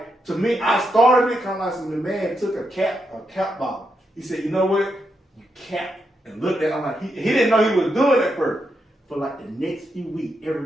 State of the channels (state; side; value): normal; both; correlation 0.83